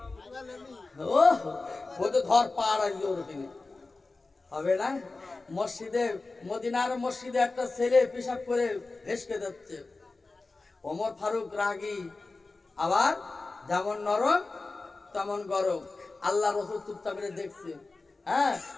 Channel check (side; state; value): right; quieter; 3.5 dB